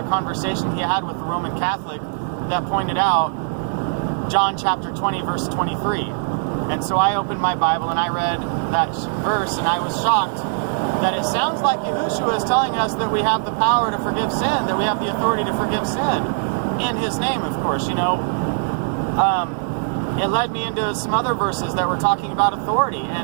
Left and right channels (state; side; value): silent; left; digital silence